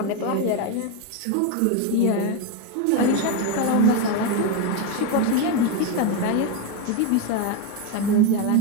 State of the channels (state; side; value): different; both; correlation 0.02